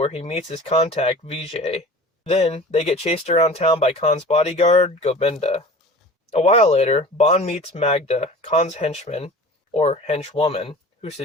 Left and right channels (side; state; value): both; normal; correlation 0.40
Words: he meets his contact, Vijay. Then, they get chased around town by Khan's bodyguard, Govinda. A while later, Bond meets Magda, Khan's henchman, or henchwoman, who